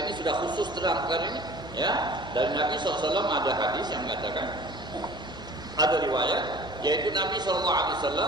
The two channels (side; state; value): left; noise; hum, 17 dB below the sound